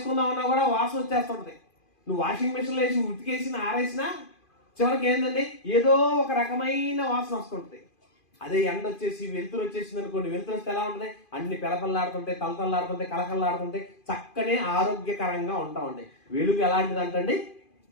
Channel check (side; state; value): right; late; 2.5 ms